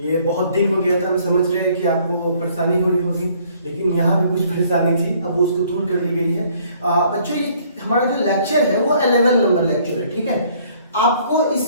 बहुत दिन हो गया था, हम समझ रहे हैं कि आपको परेशानी हो रही होगी, लेकिन यहाँ भी कुछ परेशानी थी, अब उसको दूर कर ली गई है। बच्चों, ये हमारा जो लेक्चर है वो 11 नंबर लेक्चर है, ठीक है। आपको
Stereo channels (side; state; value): both; inverted; correlation -0.61